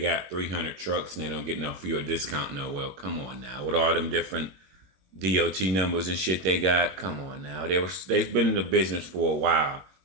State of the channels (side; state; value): left; late; 21 ms